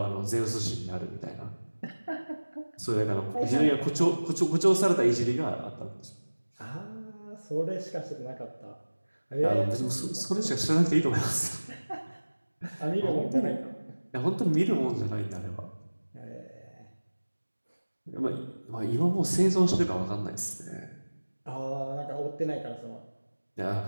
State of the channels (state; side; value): inverted; both; correlation -1.00